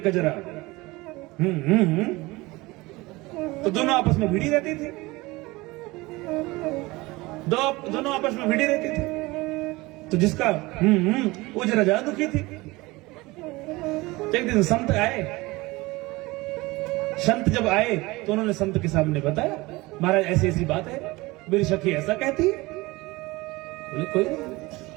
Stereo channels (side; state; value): left; quieter; 21.8 dB